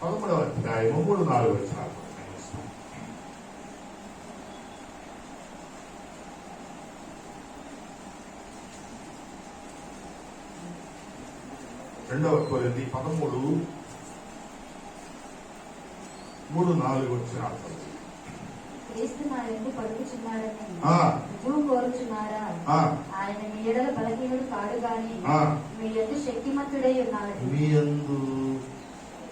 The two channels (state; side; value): identical; both; correlation 1.00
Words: 11వ అధ్యాయం 3-4 వచనాలు. 2 కొరింథీ 13:3-4 వచనాలు. క్రీస్తు నా యందు పలుకుచున్నాడని రుజువు కోరుచున్నారా? ఆయన మీ ఎడల బలహీనుడు కాడు గాని మీ యందు శక్తిమంతుడై ఉన్నాడు. మీ యందు